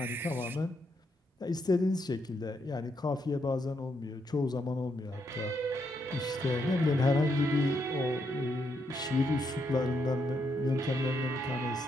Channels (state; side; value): normal; both; correlation 0.78